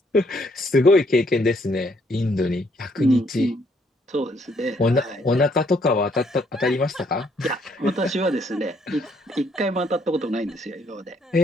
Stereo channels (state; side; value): normal; both; correlation 0.69